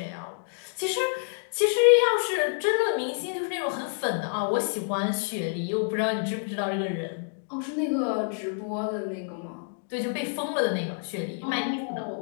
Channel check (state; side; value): silent; right; digital silence